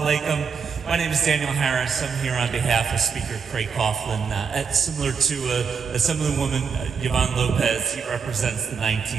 alaikum. My name is Daniel Harris. I'm here on behalf of Speaker Craig Coughlin. Similar to a Assemblywoman Yvonne Lopez, he represents the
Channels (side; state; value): left; quieter; 6.0 dB